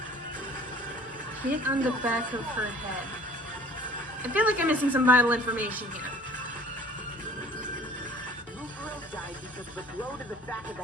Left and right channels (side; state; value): both; normal; correlation 0.50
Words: Hit on the back of her head. I feel like I'm missing some vital information here. Mukuro died because of the blow to the back of